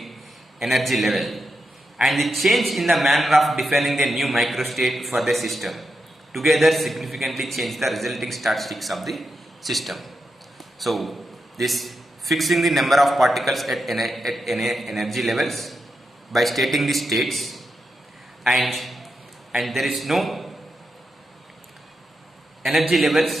energy level, and the change in the manner of defining the new microstate for the system together significantly change the resulting statistics of the system. So this fixing the number of particles at energy levels by stating the states, and there is no energy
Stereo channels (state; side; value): normal; both; correlation 0.86